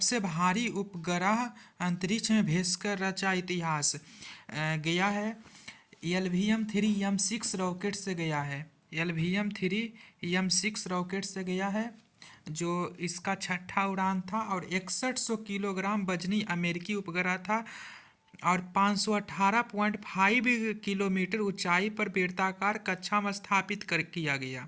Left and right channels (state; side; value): identical; both; correlation 1.00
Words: भारी उपग्रह अंतरिक्ष में भेजकर रचा इतिहास। गया है LVM-3 M6 रॉकेट से गया है। LVM-3 M6 रॉकेट से गया है जो इसका छठा उड़ान था और 6100 किलोग्राम वजनी अमेरिकी उपग्रह था और 518.5 किलोमीटर ऊंचाई पर बेलनाकार कक्षा में स्थापित कर किया गया।